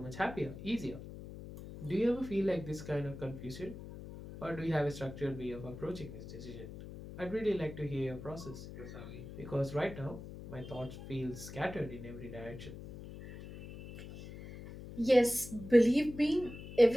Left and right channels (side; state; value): left; noise; hum, 12 dB below the sound